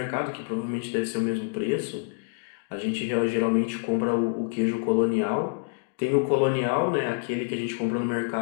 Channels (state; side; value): silent; right; digital silence